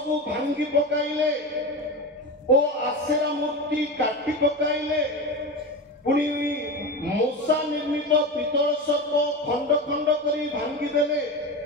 ଭାଙ୍ଗି ପକାଇଲେ ଓ ଆଶେରା ମୂର୍ତ୍ତି କାଟି ପକାଇଲେ। ପୁଣି ମୂଷା ନିର୍ମିତ ପିତ୍ତଳ ସର୍ପ ଖଣ୍ଡ ଖଣ୍ଡ କରି ଭାଙ୍ଗିଦେଲେ।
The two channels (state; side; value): normal; both; correlation 0.23